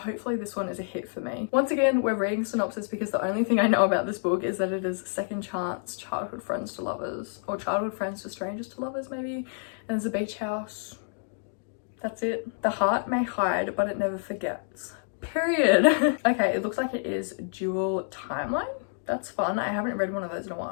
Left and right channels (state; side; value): silent; right; digital silence